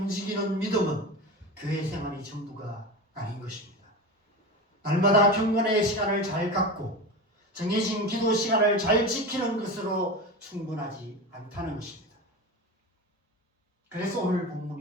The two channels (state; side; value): normal; both; correlation 0.26